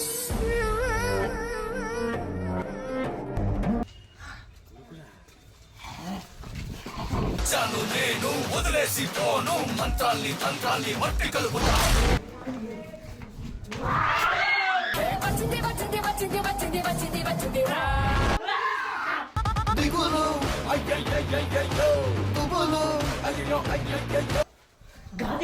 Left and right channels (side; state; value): both; identical; correlation 1.00